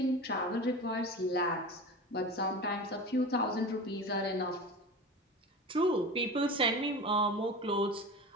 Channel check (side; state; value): both; normal; correlation 0.31